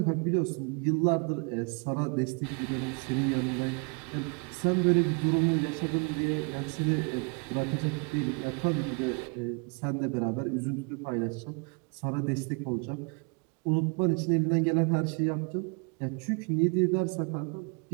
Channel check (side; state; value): left; quieter; 34.6 dB